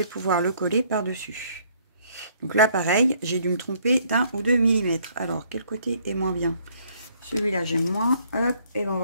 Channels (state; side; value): inverted; both; correlation -0.64